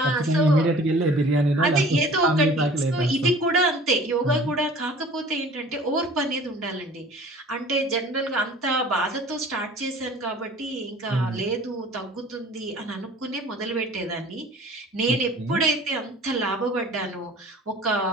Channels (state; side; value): normal; both; correlation 0.47